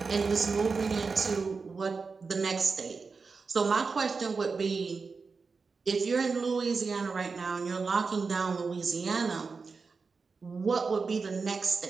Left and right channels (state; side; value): quieter; left; 4.7 dB